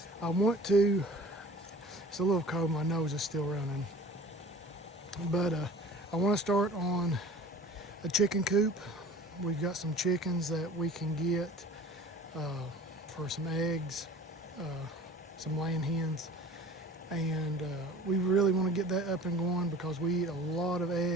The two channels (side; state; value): both; normal; correlation 0.44